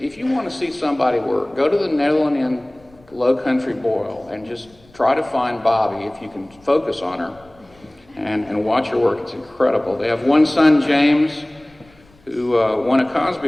want to see somebody work, go to the Netherlands Inn Low Country Boil and just try to find Bobby if you can focus on her and watch her work. It's incredible. They have one son, James, who won a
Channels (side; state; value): left; noise; rumble, 29 dB below the sound